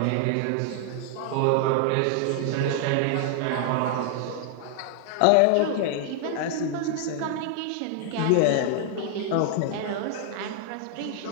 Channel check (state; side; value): different; both; correlation 0.00